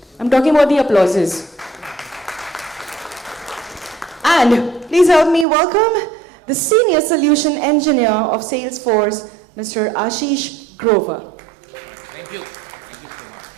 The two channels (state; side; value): drops out; left; at 5.5 s